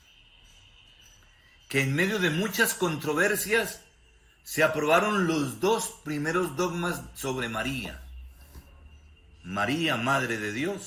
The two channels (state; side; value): identical; both; correlation 1.00